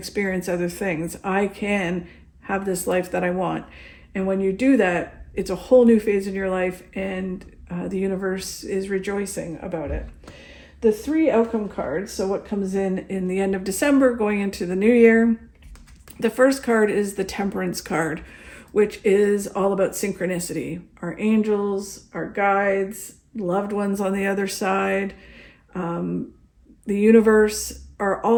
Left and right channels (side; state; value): both; identical; correlation 1.00